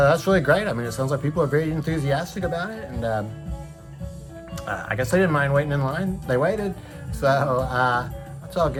really great. I mean, it sounds like people are very enthusiastic about it, and I guess they didn't mind waiting in line. They waited, so that's all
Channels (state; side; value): identical; both; correlation 1.00